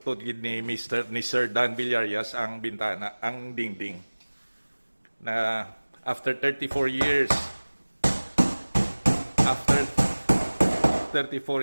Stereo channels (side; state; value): both; inverted; correlation -1.00